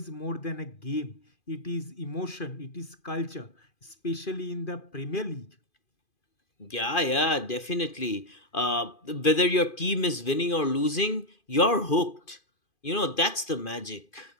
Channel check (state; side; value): late; right; 2.5 ms